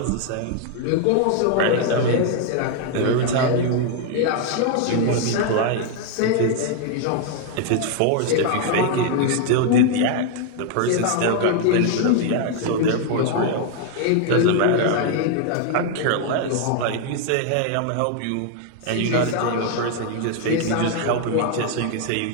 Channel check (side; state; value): both; different; correlation 0.00